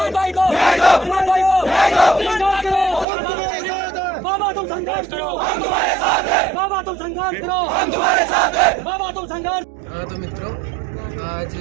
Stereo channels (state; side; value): drops out; left; at 3.1 s